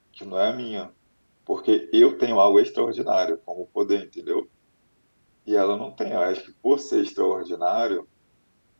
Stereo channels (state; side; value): inverted; both; correlation -1.00